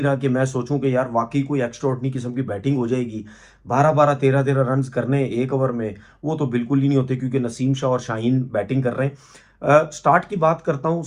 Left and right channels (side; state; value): both; identical; correlation 1.00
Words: रहा कि मैं सोचूं कि यार वाकई कोई एक्स्ट्राऑर्डिनरी किस्म की बैटिंग हो जाएगी। 12-12 13-13 रन्स करने एक ओवर में, वो तो बिल्कुल ही नहीं होते, क्योंकि नसीम शाह और शाहीन बैटिंग कर रहे हैं। स्टार्ट की बात करता हूँ।